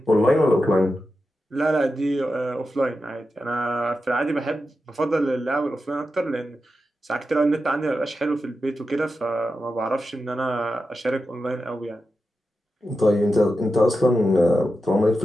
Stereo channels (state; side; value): normal; both; correlation 0.90